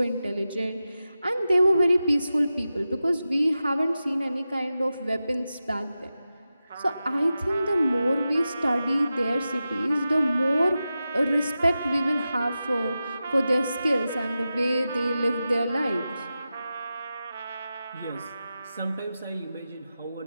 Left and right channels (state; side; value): inverted; both; correlation -0.92